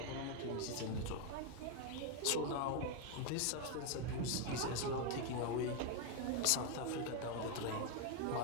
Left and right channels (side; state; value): both; different; correlation 0.01